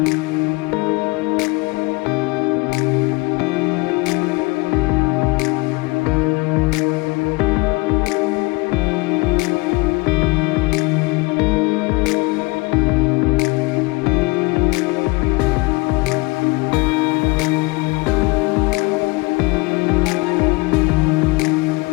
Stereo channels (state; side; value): quieter; right; 25.5 dB